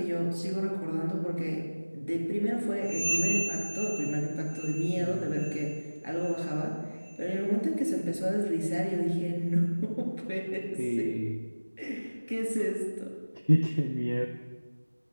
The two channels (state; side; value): inverted; both; correlation -1.00